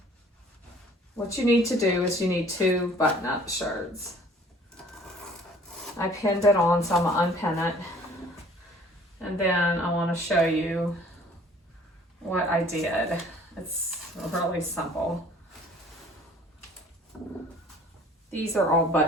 what you need to do is you need two button-up shirts. I pinned it on, so I'm gonna unpin it. And then I want to show you what I did. It's really simple. These are all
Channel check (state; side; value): normal; both; correlation 0.53